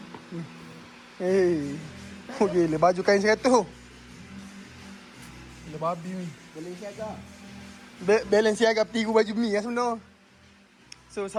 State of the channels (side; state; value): both; identical; correlation 1.00